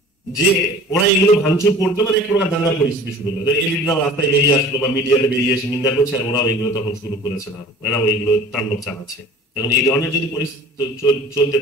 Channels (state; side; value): normal; both; correlation 0.44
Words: যে ওরা এগুলো ভাঙচুর করতো, মানে এক প্রকার দাঙ্গার পরিস্থিতি শুরু হলো। এলিটরাও রাস্তায় বেরিয়ে আসলো বা মিডিয়াতে বেরিয়ে এসে নিন্দা করছে, আর ওরাও এগুলো তখন শুরু করেছে না, এরাও এগুলো তাণ্ডব চালাচ্ছে। এখন এই ধরনের যদি পরিস্থিতি চলতে